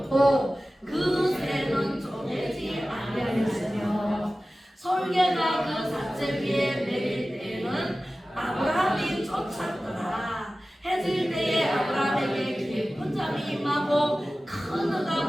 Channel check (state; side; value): normal; both; correlation 0.96